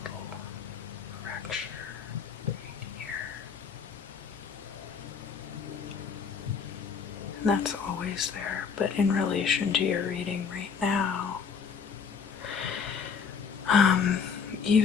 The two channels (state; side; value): quieter; right; 6.2 dB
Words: little fracture right here. And that's always there, but in relation to your reading right now,